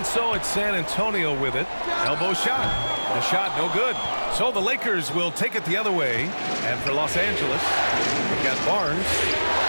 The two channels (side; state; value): both; inverted; correlation -1.00